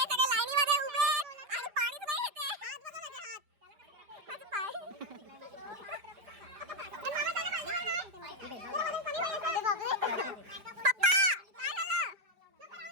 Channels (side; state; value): left; late; 5.0 ms